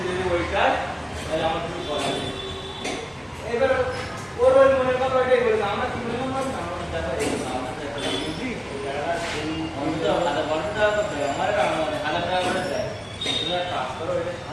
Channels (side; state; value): both; identical; correlation 1.00